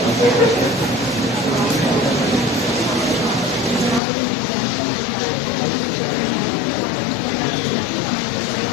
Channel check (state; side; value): drops out; right; at 4.0 s